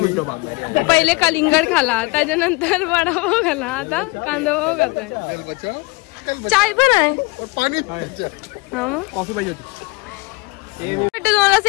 पहिले कलिंगड खाला, त्याच्यानंतर वडापाव खाला, आता कांदा पाव खाताय. चाय पण आहे, पाणी कॉफी पाहिजे होती. तुम्हाला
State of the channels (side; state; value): right; quieter; 25.5 dB